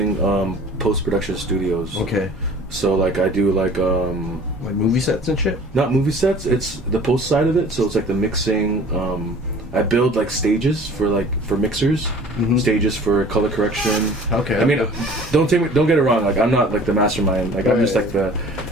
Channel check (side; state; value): both; normal; correlation 0.47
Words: post-production studios. Okay. So like I do like Like movie sets and shit. not movie sets, it's the post side of it. So it's like the mixing. I build like stages for mixers, Mhm. stages for color correction. Okay. I mean, don't get it wrong. Like I'm not like the mastermind. Like I'm just like the